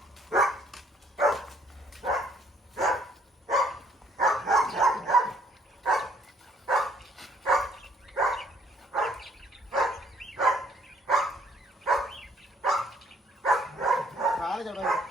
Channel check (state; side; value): normal; both; correlation 0.63